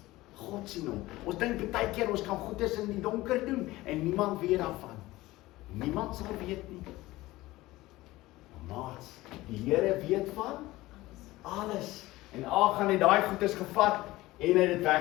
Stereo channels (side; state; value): right; quieter; 18.3 dB